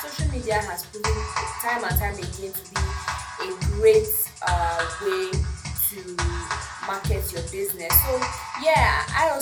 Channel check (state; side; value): identical; both; correlation 1.00